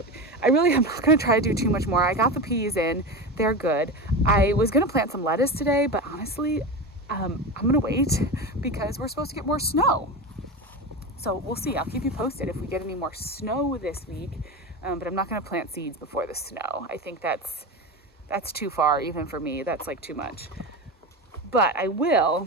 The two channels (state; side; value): normal; both; correlation 0.23